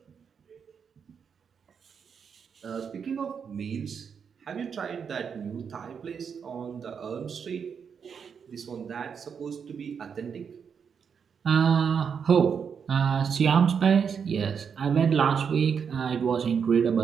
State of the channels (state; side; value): quieter; left; 6.7 dB